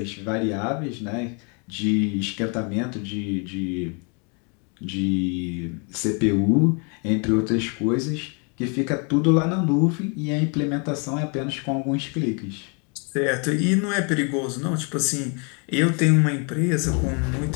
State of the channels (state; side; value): quieter; right; 35.7 dB